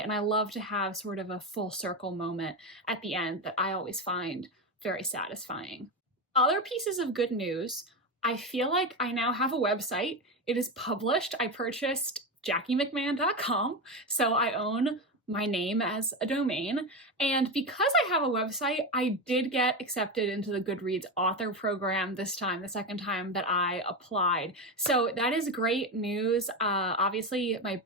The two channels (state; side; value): normal; both; correlation 0.17